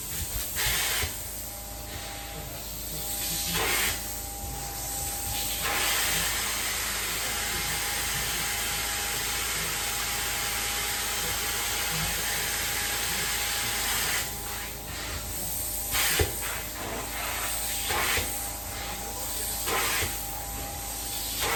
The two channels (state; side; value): identical; both; correlation 1.00